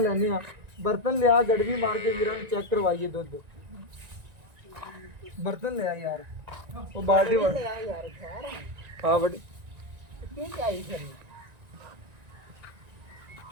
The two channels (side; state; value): left; late; 1.9 ms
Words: लैने बर्तन लिया गड़वी मार के वीरां नूं चेक करवाइए दुध। बर्तन लिया यार वो बाल्टी हाँ बड़ी